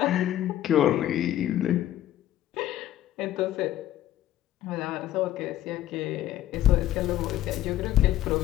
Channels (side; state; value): right; quieter; 12.9 dB